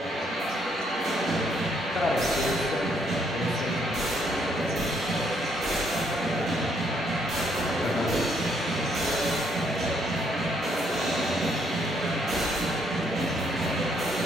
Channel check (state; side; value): normal; both; correlation 0.70